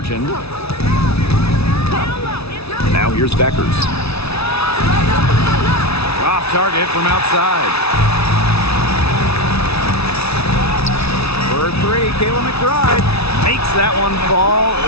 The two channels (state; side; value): late; right; 0.79 ms